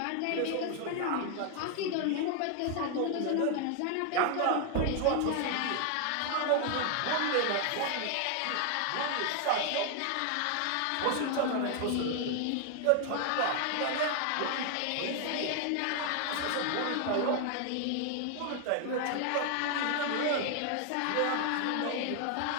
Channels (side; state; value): both; different; correlation 0.00